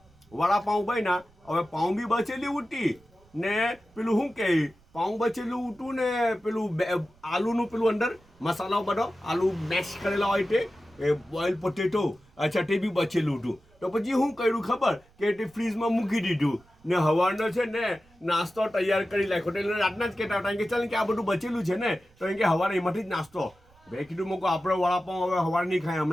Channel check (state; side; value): noise; right; rumble, 30 dB below the sound